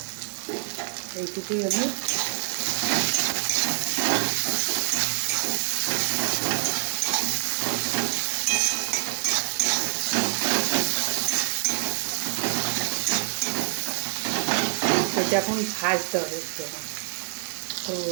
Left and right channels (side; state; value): left; silent; digital silence